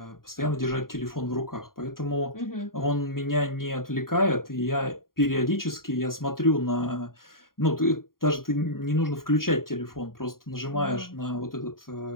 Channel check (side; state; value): right; late; 0.92 ms